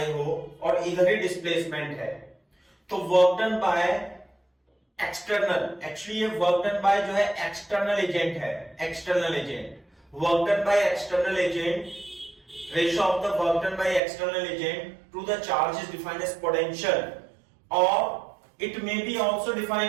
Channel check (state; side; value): drops out; left; at 14.0 s